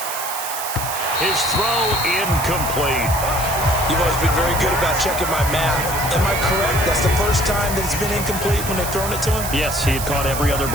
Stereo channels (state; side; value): noise; right; hiss, 6 dB below the sound